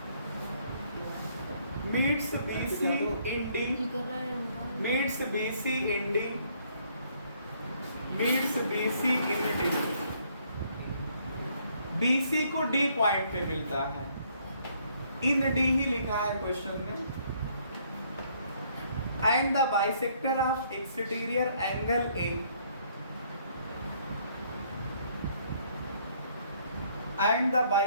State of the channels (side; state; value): both; inverted; correlation -0.67